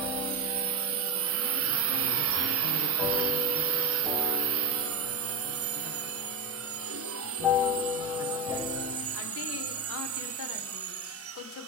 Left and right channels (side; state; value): left; quieter; 3.4 dB